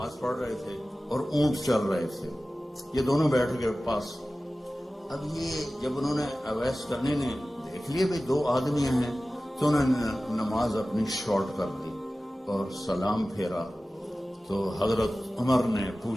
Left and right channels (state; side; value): normal; both; correlation 0.96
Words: پڑھ رہے تھے اور اونٹ چل رہے تھے. یہ دونوں بیٹھ گئے پاس. اب یہ جب انہوں نے اویس کرنے نے دیکھ لیے بھائی دو آدمی ہیں تو انہوں نے نماز اپنی شارٹ کر دی اور سلام پھیرا. تو حضرت عمر نے